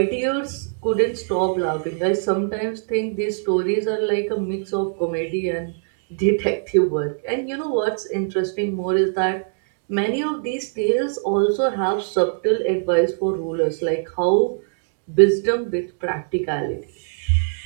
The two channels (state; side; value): silent; left; digital silence